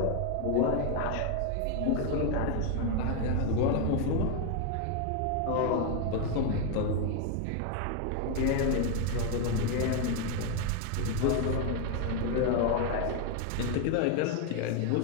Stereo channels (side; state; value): both; different; correlation 0.01